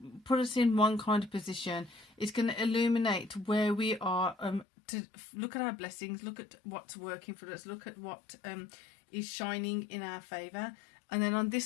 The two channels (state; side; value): drops out; right; at 4.7 s